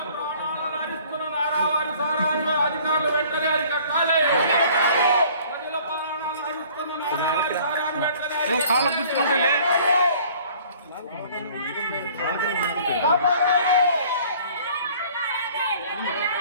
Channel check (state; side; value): inverted; both; correlation -0.53